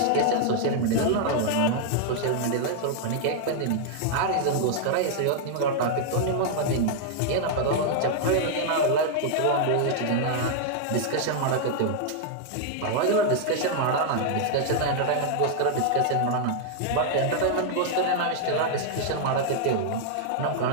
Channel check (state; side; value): different; both; correlation 0.00